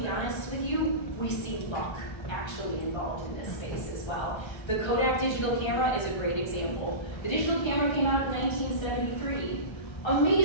honest with you, we see luck actually involved in this space as well. The Kodak digital camera is a great example. The digital camera came out in 1973.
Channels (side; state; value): right; late; 1.3 ms